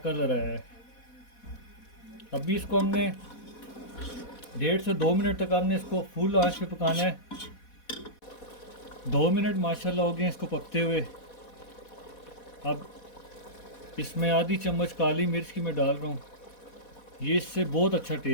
कलर है। अभी इसको हमने 1.5 से 2 मिनट तक हमने इसको फुल आंच पे पकाना है। 2 मिनट माशाल्लाह हो गए इसको पकते हुए। अब इसमें आधी चम्मच काली मिर्च की मैं डाल रहा हूँ, ये इससे बहुत अच्छा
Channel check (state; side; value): late; right; 4.1 ms